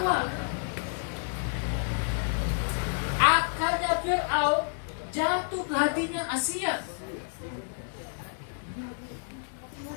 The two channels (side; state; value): right; silent; 58 dB below the other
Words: Akalnya Fir'aun jatuh ke hatinya Asia.